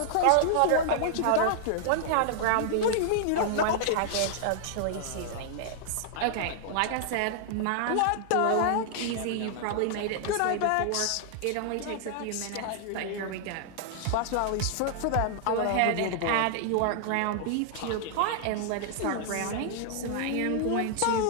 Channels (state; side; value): different; both; correlation -0.01